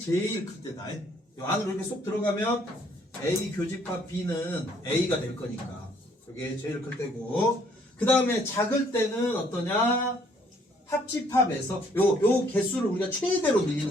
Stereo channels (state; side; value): normal; both; correlation 0.64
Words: 클 때다. 이 안으로 이렇게 쏙 들어가면 A 교집합 B는 A가 될 거니까 그게 제일 클 때고, 그 다음에 작을 때는 어떠냐? 합집합에서 요 개수를 우리가 최대로